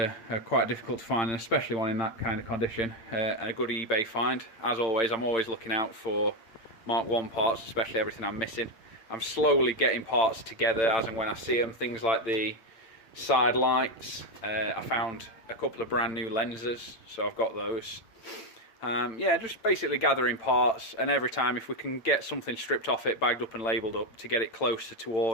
are quite difficult to find, and especially one in that kind of condition. A good eBay find. As always, I'm always looking out for Mk1 parts, especially everything I'm missing. I'm slowly getting parts together as and when I see them. Things like the side lights. I found a couple of brand new lenses, so I've got those. Yeah, just basically gathering parts, and every time if we can get something stripped off it, bagged up and labelled up to get it closer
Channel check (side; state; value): right; late; 8.8 ms